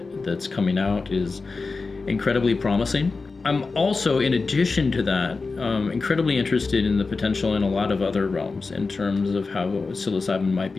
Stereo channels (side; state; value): right; quieter; 4.1 dB